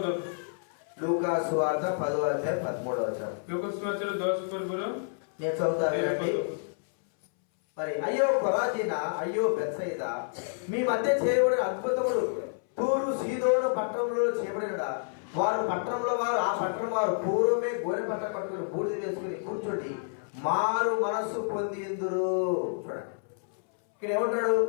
లూకా సువార్త 10వ అధ్యాయం 13వ వచనం. ଲୁକ ସୁସମାଚାର 10 ପର୍ବର నేను చదువుతా 13 వినండి. ପଦ। మరి అయ్యో కొరాజీనా, అయ్యో బెత్సయిదా, మీ మధ్య చేయబడిన అద్భుతములు తూరు సీదోను పట్టణంలో చేయబడినడా, వారు ఆ పట్టణం వారు పూర్వమే గోనె పట్ట కట్టుకుని బూడిద వేసుకుని కూర్చోండి మారు మనస్సు పొందిందురు. చూడండి ఇక్కడ ఏమంటాడు,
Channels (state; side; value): silent; right; 59 dB below the other